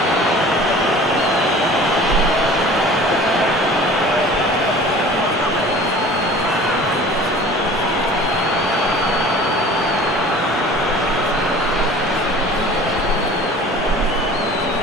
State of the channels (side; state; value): both; normal; correlation 0.44